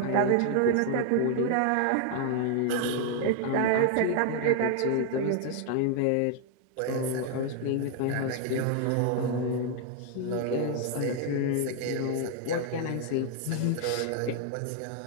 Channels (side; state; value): both; different; correlation 0.00